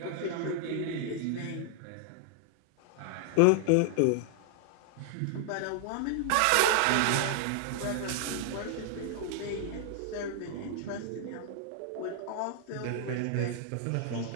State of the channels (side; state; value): both; different; correlation 0.00